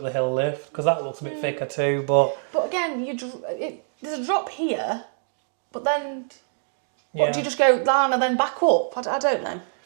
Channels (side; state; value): left; silent; digital silence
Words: the hill lift, because that looks a bit thicker too. But But again, there's a drop here, but then yeah, what, do you just go down and then back up? I don't know.